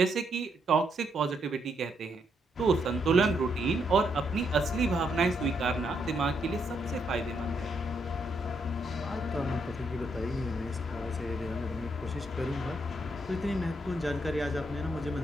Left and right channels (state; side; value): normal; both; correlation 0.76